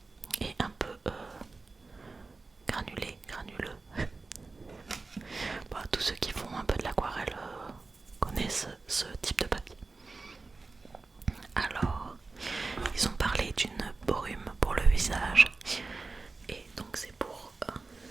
et un peu granuleux. Bon, tous ceux qui font un peu de l'aquarelle connaissent ce type de papier. Alors, ils ont parlé d'une brume pour le visage et donc c'est pour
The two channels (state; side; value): quieter; left; 3.7 dB